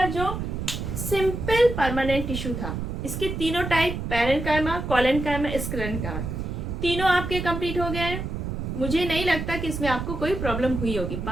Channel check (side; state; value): right; noise; rumble, 4 dB below the sound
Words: जो सिंपल परमानेंट टिश्यू था, इसके तीनों टाइप, पैरेन्काइमा, कोलेनकाइमा, स्क्लेरेनकाइमा, तीनों आपके कंप्लीट हो गए हैं। मुझे नहीं लगता कि इसमें आपको कोई प्रॉब्लम हुई होगी।